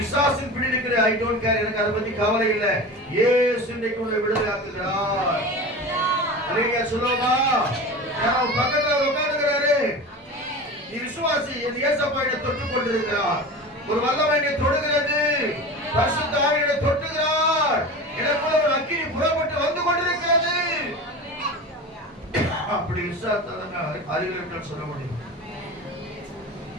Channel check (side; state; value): both; normal; correlation 0.31